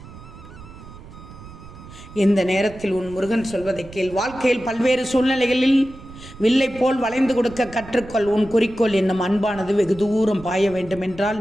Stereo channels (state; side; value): noise; right; rumble, 17 dB below the sound